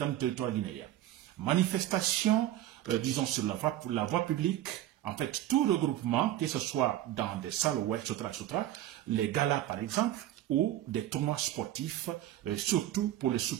du territoire guinéen. Manifestation, disons, sur la voie publique, en fait, tout regroupement, que ce soit dans des salles, etc., les galas, par exemple, ou des tournois sportifs, surtout pour le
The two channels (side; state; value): left; quieter; 13.4 dB